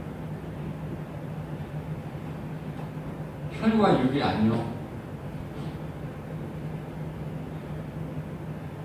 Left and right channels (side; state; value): both; identical; correlation 1.00